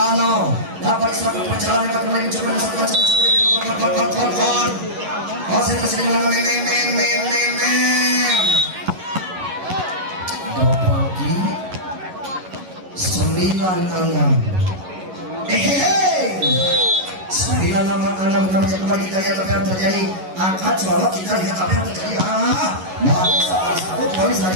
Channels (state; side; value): late; left; 11 ms